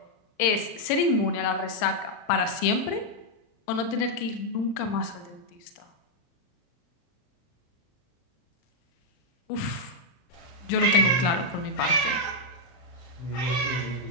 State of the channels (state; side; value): late; right; 40 ms